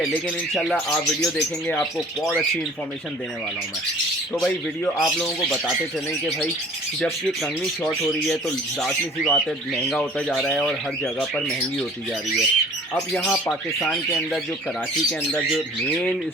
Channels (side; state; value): both; normal; correlation 0.48